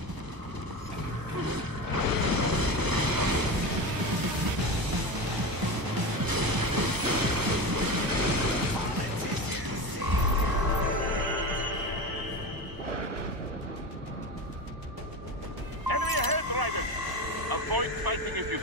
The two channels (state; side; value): late; left; 1.0 ms